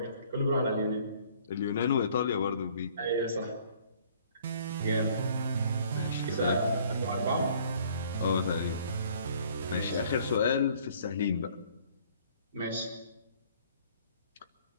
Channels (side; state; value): both; inverted; correlation -0.57